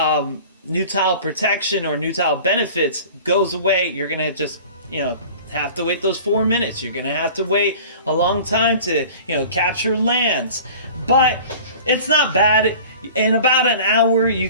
protection or new tile benefits goes away, you're going to just have to wait those 4 minutes. You're going to have to wait a long time to capture lands, but it's not bad. In about an hour you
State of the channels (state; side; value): inverted; both; correlation -0.42